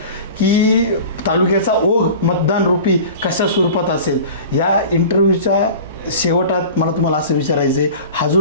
की तालुक्याचा ओघ मतदान रूपी कशा स्वरूपात असेल. या इंटरव्ह्यूच्या शेवटात मला तुम्हाला असं विचारायचं आहे, हा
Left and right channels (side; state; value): both; inverted; correlation -0.38